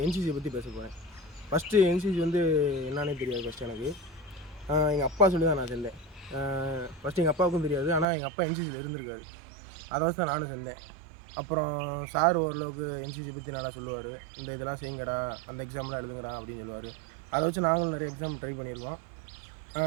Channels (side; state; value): left; drops out; at 8.1 s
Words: என்சிசியை பற்றி பேச போகிறேன். ஃபஸ்ட்டு என்சிசி வந்து என்னன்னே தெரியாது. ஃபஸ்ட்டு எனக்கு எங்கள் அப்பா சொல்லி தான் நான் சேர்ந்தேன். ஃபஸ்ட்டு எங்கள் அப்பாவுக்கும் தெரியாது, ஆனால் எங்கள் அப்பா என்சிசியில் இருந்திருக்காரு. அதை வச்சு தான் நானும் சேர்ந்தேன். அப்புறம் சார் ஓரளவுக்கு என்சிசி பற்றி நல்லா சொல்லுவார். இந்த இதெல்லாம் செய்யுங்கடா, அந்த எக்ஸாம்லாம் எழுதுங்கடா அப்படின்னு சொல்லுவார். அதை வச்சு நாங்களும் நிறைய எக்ஸாம் ட்ரை பண்ணியிருக்கோம்.